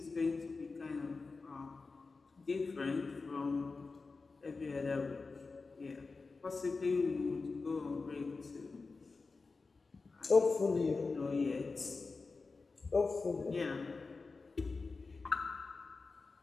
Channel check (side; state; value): right; quieter; 4.1 dB